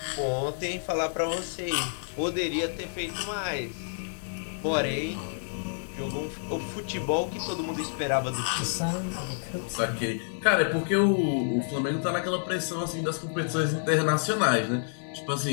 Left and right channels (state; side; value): silent; right; 59 dB below the other